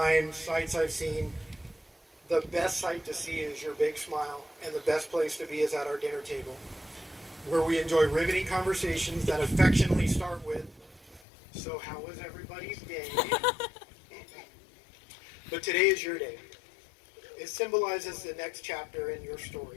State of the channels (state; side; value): drops out; right; at 11.2 s